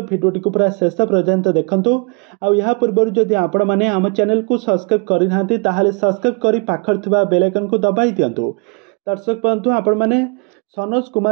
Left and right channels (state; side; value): quieter; left; 33.8 dB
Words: भिडियोटी को पूरा शेष पर्यंत देखूँ। आ पूर्व जदि आपण मैंने आम चैनल को सब्सक्राइब करना ताहले सब्सक्राइब कर पाखर थिबा बेल आइकन को दबाई दिंतु। दर्शक बंधु आपण मैंने सनोज